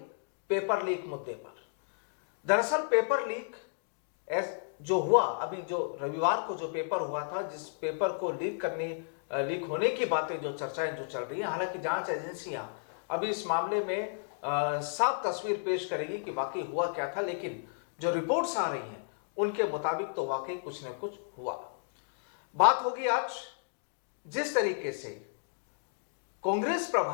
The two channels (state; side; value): silent; right; digital silence